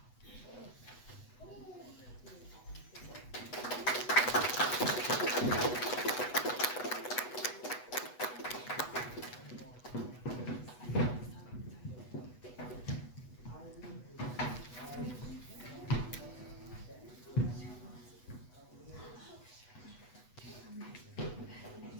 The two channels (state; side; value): late; right; 8.1 ms